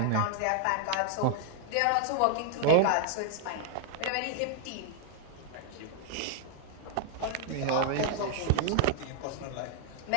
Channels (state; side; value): different; both; correlation 0.00